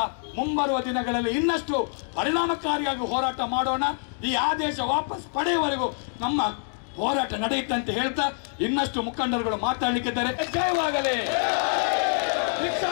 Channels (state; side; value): silent; right; 56 dB below the other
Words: ಮುಂಬರುವ ದಿನಗಳಲ್ಲಿ ಇನ್ನಷ್ಟು ಪರಿಣಾಮಕಾರಿಯಾಗಿ ಹೋರಾಟ ಮಾಡೋಣ. ಈ ಆದೇಶ ವಾಪಸ್ ಪಡೆಯುವವರೆಗೂ ನಮ್ಮ ಹೋರಾಟ ನಡೆಯುತ್ತೆ ಅಂತ ಹೇಳ್ತಾ ಇನ್ನಷ್ಟು ಮುಖಂಡರುಗಳು ಮಾತಾಡಲಿಕ್ಕಿದ್ದಾರೆ. ಜಯವಾಗಲಿ